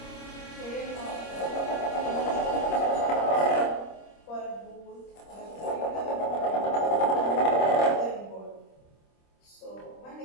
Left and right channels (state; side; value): late; right; 26 ms